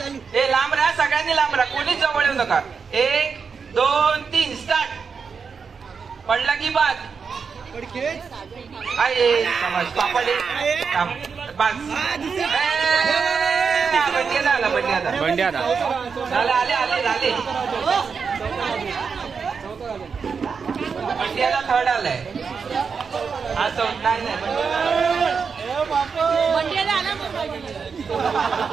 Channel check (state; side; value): quieter; left; 5.7 dB